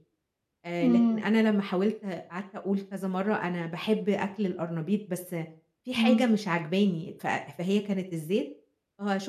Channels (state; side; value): identical; both; correlation 1.00